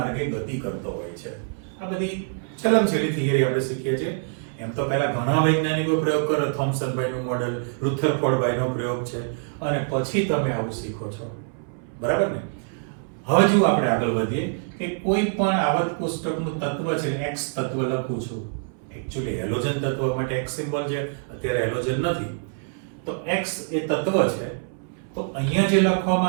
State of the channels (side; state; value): left; silent; 62 dB below the other